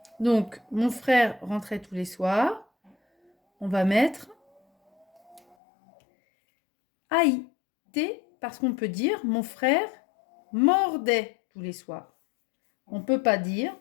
Donc, mon frère rentrait tous les soirs. On va mettre AIT parce qu'on peut dire mon frère mordait tous les soirs. On ne peut pas dire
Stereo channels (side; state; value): right; drops out; at 5.4 s